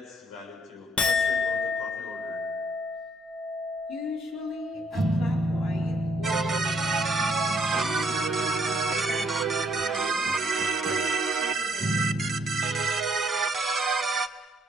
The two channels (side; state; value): both; normal; correlation 0.67